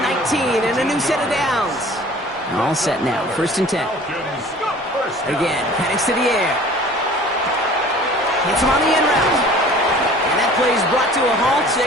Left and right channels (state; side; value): normal; both; correlation 0.47